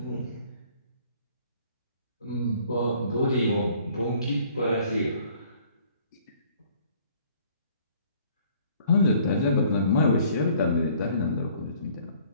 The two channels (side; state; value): both; inverted; correlation -0.58